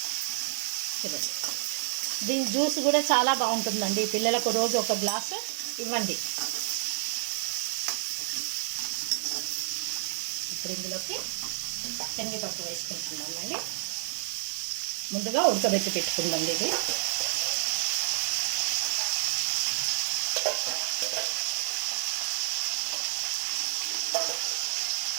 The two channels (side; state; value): left; silent; 58 dB below the other